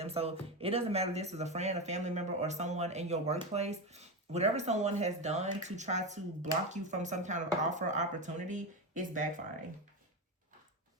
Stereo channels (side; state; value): both; normal; correlation 0.16